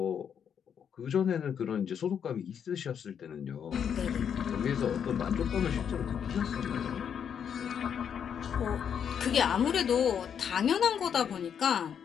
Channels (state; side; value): quieter; right; 8.0 dB